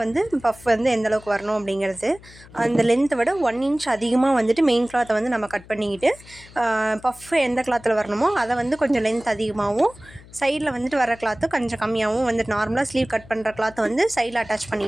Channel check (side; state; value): left; noise; hum, 21 dB below the sound